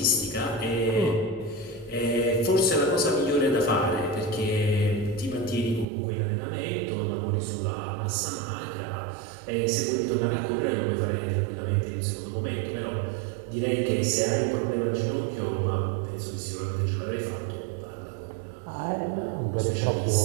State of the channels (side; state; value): left; drops out; at 5.9 s